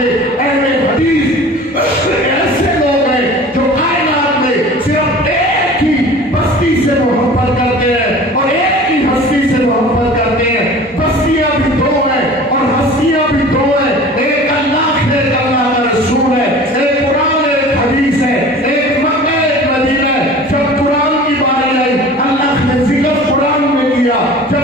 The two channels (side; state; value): both; normal; correlation 0.41